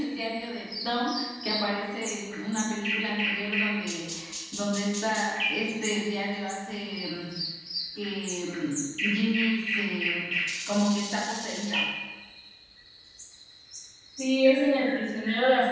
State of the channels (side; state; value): both; identical; correlation 1.00